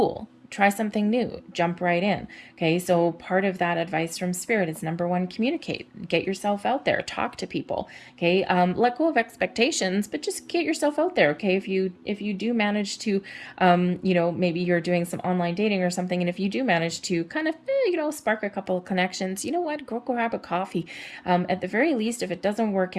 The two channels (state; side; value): identical; both; correlation 1.00